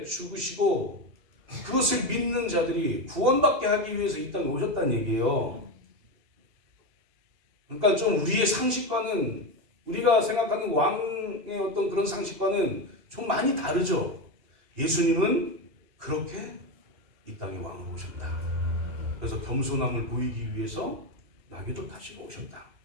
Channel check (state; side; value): late; left; 2.8 ms